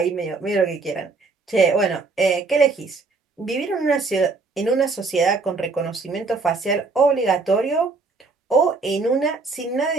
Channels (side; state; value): left; quieter; 4.0 dB